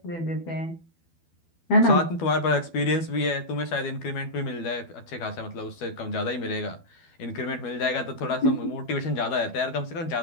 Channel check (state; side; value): late; right; 12 ms